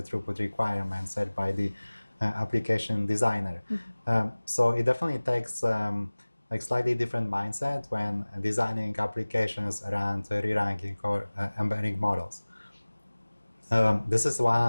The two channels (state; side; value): inverted; both; correlation -1.00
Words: throughput requirements set by the application designer. So it definitely takes slightly different mindset when designing applications around re-ranking or embedding models. This is